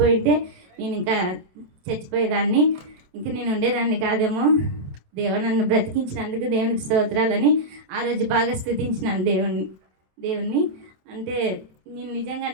నేను ఇంకా చచ్చిపోయేదాన్ని, ఇంకా నేను ఉండేదాన్ని కాదేమో. దేవుడు నన్ను బ్రతికించినందుకు దేవునికి స్తోత్రాలని ఆ రోజు బాగా స్తుతించినాను దేవుణ్ణి. అంటే నేను నిజంగా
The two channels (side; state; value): left; late; 27 ms